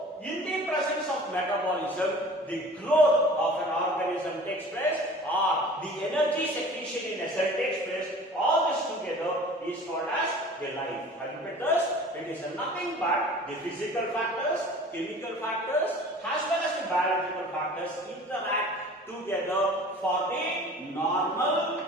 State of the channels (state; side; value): normal; both; correlation 0.44